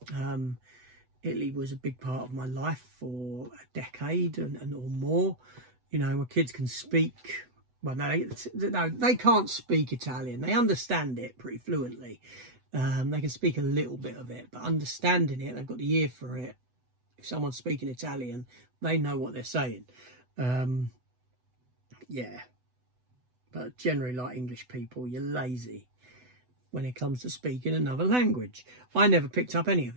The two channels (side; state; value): left; late; 8.0 ms